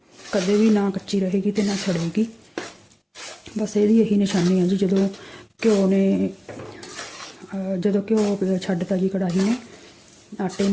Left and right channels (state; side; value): identical; both; correlation 1.00